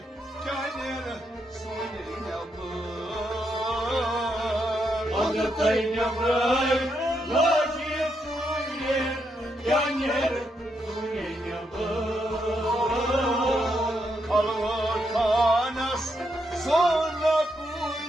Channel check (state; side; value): normal; both; correlation 0.80